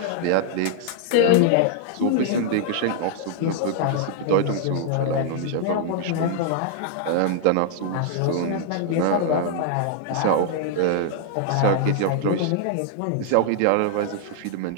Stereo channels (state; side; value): different; both; correlation -0.01